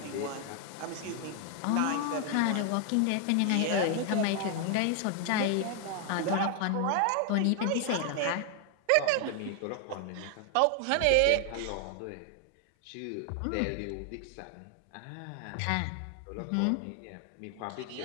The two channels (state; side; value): different; both; correlation 0.00